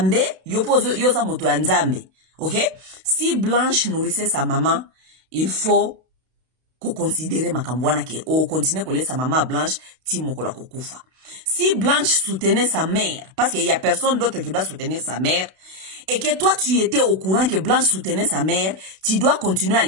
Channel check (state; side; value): late; left; 31 ms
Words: yoza moto ya nzambe. Ok? Si Blanche nourrissait sa maman, il faut ko considérer makambu wana ke o continuer kolie sa maman Blanche ti mokola kokufa. Si Blanche soutenait sa mère, parce qu'il y a personne d'autre qui doit soutenir sa mère, et que toi tu étais au courant que Blanche soutenait sa mère, tu dois continuer à